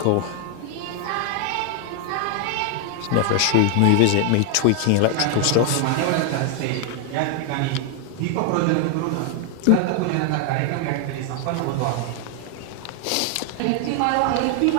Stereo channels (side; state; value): both; different; correlation 0.00